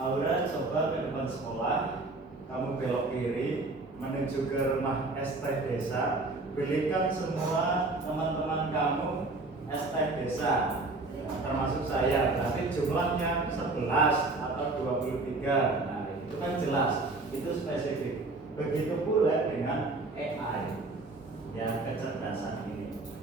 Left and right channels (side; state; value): left; quieter; 3.2 dB